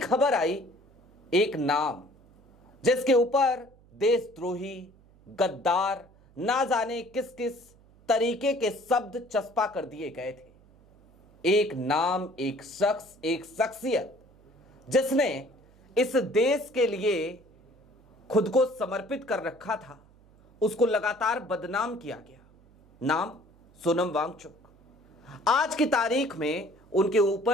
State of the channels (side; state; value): right; noise; hum, 28 dB below the sound